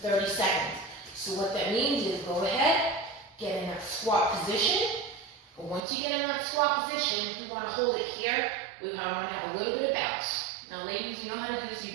seconds. So what that means is go ahead, get in that squat position. But once you get in that squat position, we want to hold it here. We want to have a little bit of bounce. Now, ladies, you know how to do this.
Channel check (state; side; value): drops out; left; at 5.8 s